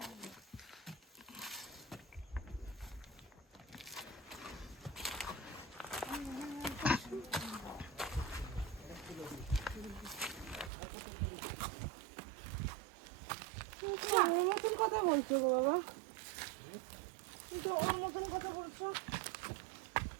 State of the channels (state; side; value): drops out; left; at 10.7 s